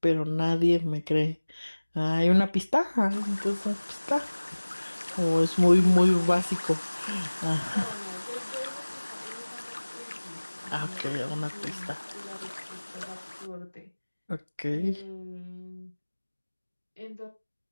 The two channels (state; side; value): inverted; both; correlation -1.00